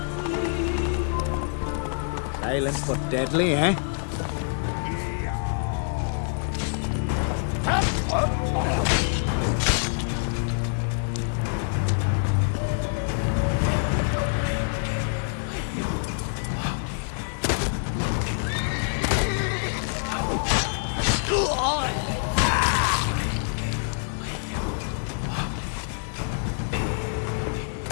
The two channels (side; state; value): right; silent; 61 dB below the other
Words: Silent but deadly, eh?